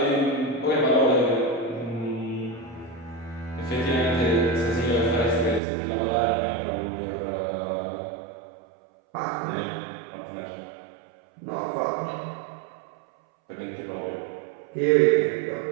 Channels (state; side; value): drops out; left; at 5.6 s